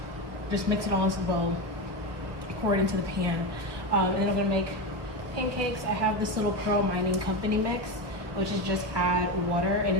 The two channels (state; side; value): late; left; 1.5 ms